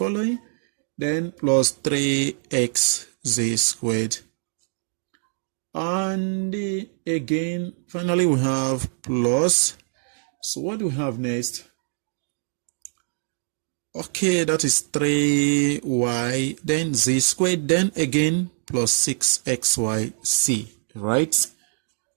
then plus 3x z squared. And again, finally we have plus. So what do we have next? Okay, that is 3y, then z squared, then again plus 6xyc, right?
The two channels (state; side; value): silent; left; 63 dB below the other